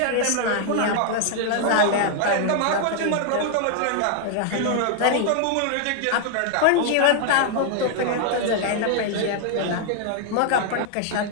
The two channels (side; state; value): both; different; correlation 0.00